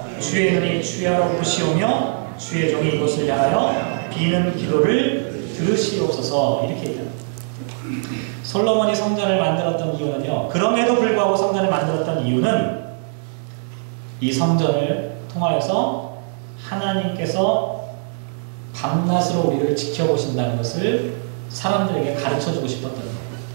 주의 눈이 주야로 보시오며 주의 종이 이곳을 향하여 비는 기도를 들으시옵소서 이렇게 얘기합니다. 솔로몬이 성전을 만들었던 이유는요, 그럼에도 불구하고 성전을 만들었던 이유는 이 성전을 통하여서 하나님께서 밤낮으로 우리를 지켜보신다는 것을 사람들에게 가르쳐주고 싶었던 거예요.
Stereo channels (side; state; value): left; silent; digital silence